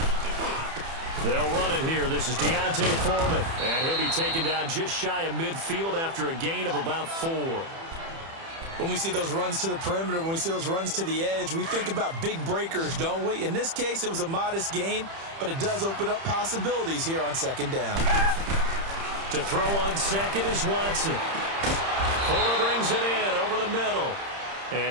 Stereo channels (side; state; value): left; late; 30 ms